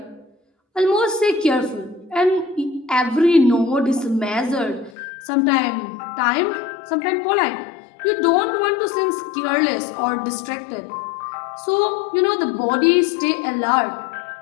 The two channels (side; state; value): right; drops out; at 5.0 s